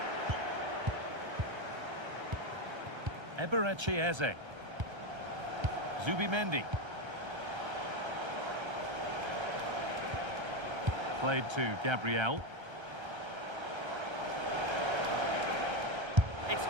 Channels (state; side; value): late; left; 1.3 ms